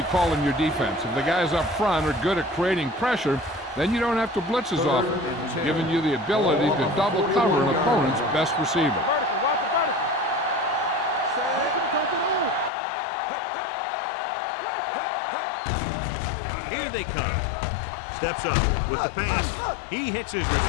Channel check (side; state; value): right; drops out; at 12.7 s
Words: calling your defense. If the guys up front are good at creating pressure, then you don't have to blitz as often, giving you the ability to double cover an opponent's best receiver. Vertical, watch the vertical. Here they come. Steps up with the pass. He hits his